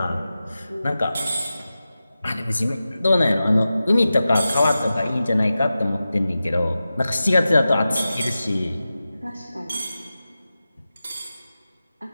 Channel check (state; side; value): inverted; both; correlation -0.94